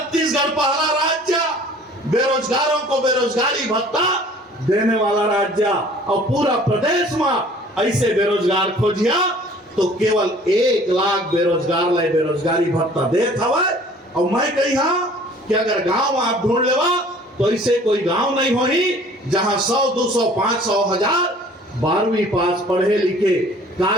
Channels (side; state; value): both; normal; correlation 0.51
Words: पहला राज्य बेरोजगारों को बेरोजगारी भत्ता देने वाला राज्य और पूरा प्रदेश में ऐसे बेरोजगार खोजिया तो केवल 1 लाख बेरोजगार लाए बेरोजगारी भत्ता देत हवाए। और मैं कही हाँ कि अगर गांव आप ढूंढ लेवा तो ऐसे कोई गांव नहीं होही जहां 100, 200, 500, 1000 12वीं पास पढ़े लिखे